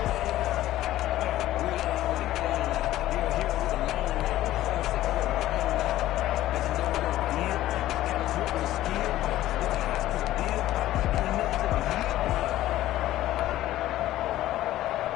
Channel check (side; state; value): right; quieter; 14.5 dB